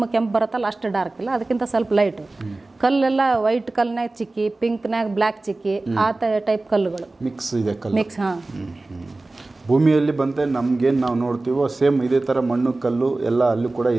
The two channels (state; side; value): quieter; left; 3.1 dB